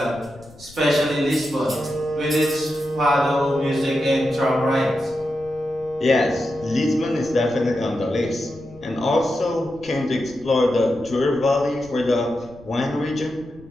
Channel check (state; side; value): noise; left; rumble, 22 dB below the sound